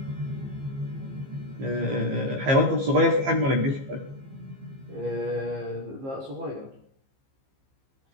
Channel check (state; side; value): late; left; 15 ms